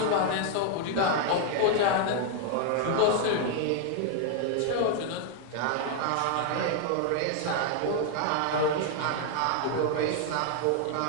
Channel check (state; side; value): different; both; correlation 0.00